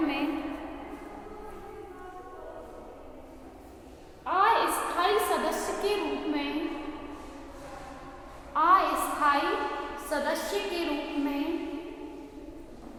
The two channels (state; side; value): identical; both; correlation 1.00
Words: में अस्थायी सदस्य के रूप में, अस्थायी सदस्य के रूप में